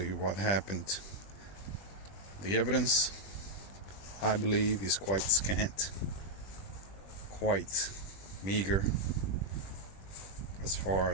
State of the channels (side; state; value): right; late; 20 ms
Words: what happened. The evidence, I believe, is quite scant, quite meager as far